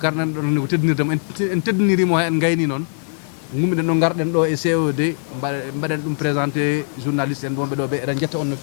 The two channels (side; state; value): right; silent; digital silence